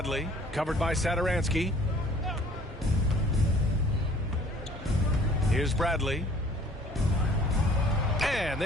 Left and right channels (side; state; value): both; normal; correlation 0.54